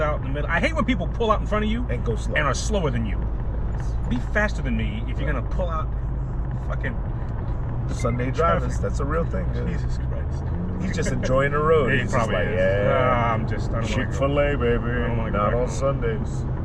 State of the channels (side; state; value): both; identical; correlation 1.00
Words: in the middle. I hate when people pull out in front of you and go slow and are slower than you. be faster than me if you're gonna pull out fucking Sunday drivers. That's a real thing. Yeah. Jesus Christ. He's just enjoying the road. Yeah, he He's just probably like, is. yeah. I don't wanna Chick-fil-A, baby. don't wanna go Not back on home. Sundays.